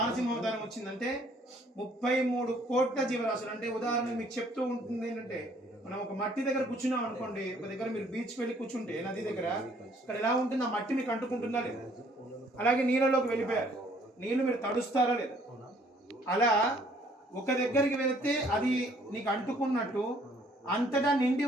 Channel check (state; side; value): normal; both; correlation 0.61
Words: అవతారం వచ్చిందంటే 33 కోట్ల జీవరాశులు. అంటే ఉదాహరణ మీకు చెప్తూ ఉంటుంది ఏంటంటే, మనం ఒక మట్టి దగ్గర కూర్చున్నాం అనుకోండి, ఒక దగ్గర మీరు బీచ్కి వెళ్ళి కూర్చుంటే నది దగ్గర, ఇక్కడ ఎలా ఉంటుంది, ఆ మట్టి మీకు అంటుకుంటుందా లేదా? అలాగే నీళ్ళలోకి వెళ్ళిపోయారు, నీళ్ళు మీరు తడుస్తారా లేదా? అలా ఒక దగ్గరికి వెళితే అది నీకు అంటుకున్నట్టు అంతటా నిండి